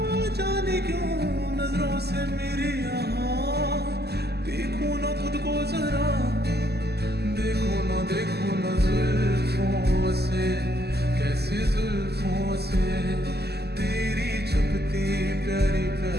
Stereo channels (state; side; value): late; left; 0.47 ms